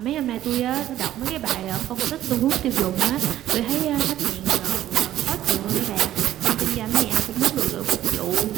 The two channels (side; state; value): left; quieter; 12.9 dB